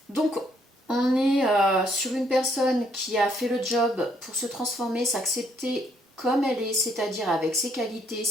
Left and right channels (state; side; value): normal; both; correlation 0.70